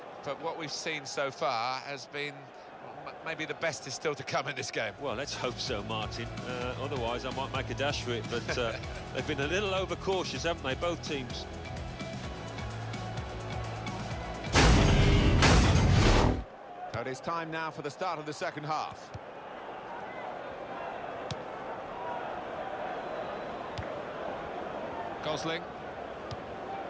but what we've seen so far has been, well, maybe the best is still to come in this game. Well, let's hope so, Martin. Otherwise, I might make a dash for it, but they've been a little overcautious, haven't they, both teams? So it is time now for the start of the second half. Gosling.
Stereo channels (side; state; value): both; identical; correlation 1.00